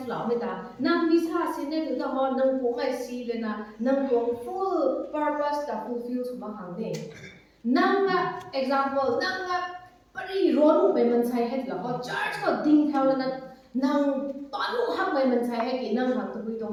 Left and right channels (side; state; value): both; identical; correlation 1.00